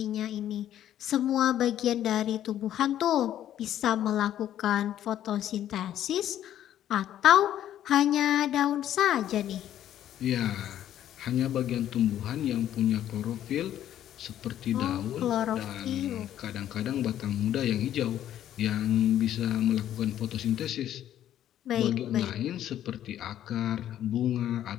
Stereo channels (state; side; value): quieter; right; 11.5 dB